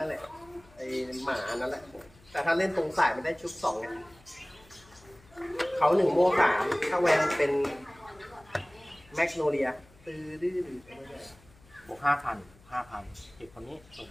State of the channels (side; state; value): left; noise; hum, 26 dB below the sound